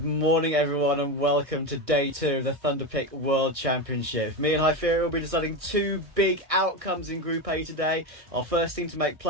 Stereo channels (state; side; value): late; left; 1.6 ms